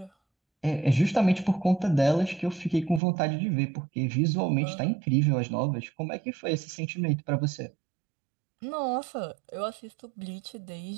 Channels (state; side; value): drops out; left; at 3.0 s